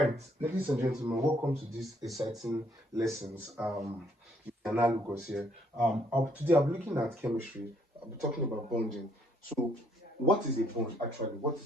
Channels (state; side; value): normal; both; correlation 0.68